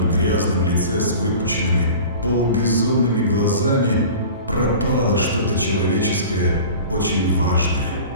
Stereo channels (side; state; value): both; inverted; correlation -0.39